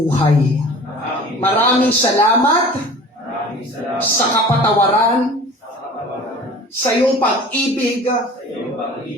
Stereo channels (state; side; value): normal; both; correlation 0.43